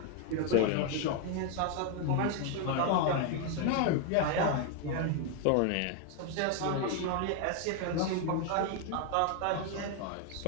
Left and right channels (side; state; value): both; different; correlation 0.01